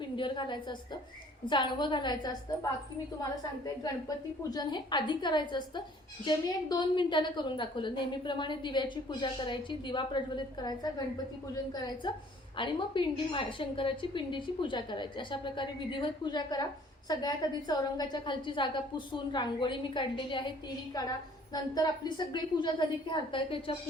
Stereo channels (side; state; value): both; normal; correlation 0.56